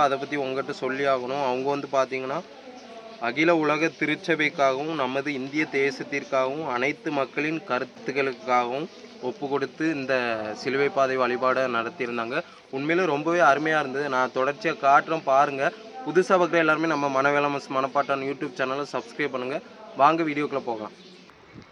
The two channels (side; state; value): both; identical; correlation 1.00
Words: அதை பற்றி உங்கள்கிட்ட சொல்லி ஆகணும். அவங்க வந்து பார்த்திங்கன்னா அகில உலக திருச்சபைக்காகவும் நமது இந்திய தேசத்திற்காகவும் அனைத்து மக்களின் கருத்துக்களுக்காகவும் ஒப்பு கொடுத்து இந்த சிலுவை பாதை வழிபாடை நடத்தியிருந்தாங்க. உண்மையிலே ரொம்பவே அருமையாக இருந்தது. நான் தொடர்ச்சியாக காட்டுறேன் பாருங்கள். புதுசாக பார்க்குற எல்லாருமே நம்ம மனவேலமஸ் மணப்பாட்டான் யூடியூப் சேனலை சப்ஸ்கிரைப் பண்ணுங்கள். வாங்க வீடியோக்குள்ளே போகலாம்.